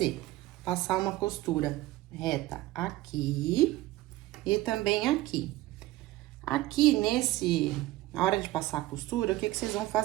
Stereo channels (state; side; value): quieter; left; 17.3 dB